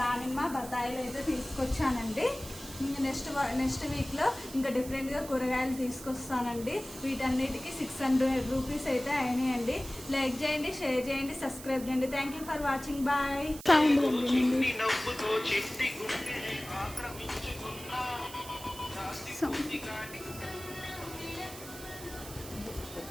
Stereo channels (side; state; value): right; noise; hiss, 14 dB below the sound